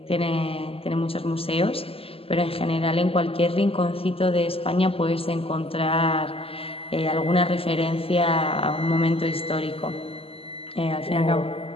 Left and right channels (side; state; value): right; late; 0.28 ms